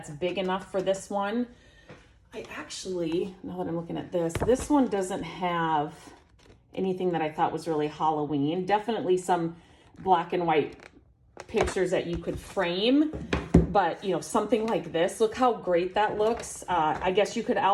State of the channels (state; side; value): identical; both; correlation 1.00